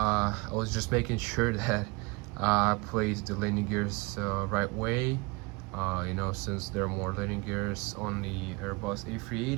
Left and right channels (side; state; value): left; quieter; 27.0 dB